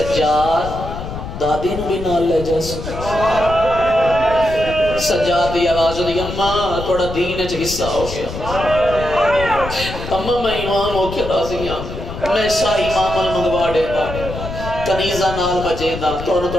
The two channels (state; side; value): noise; left; rumble, 9 dB below the sound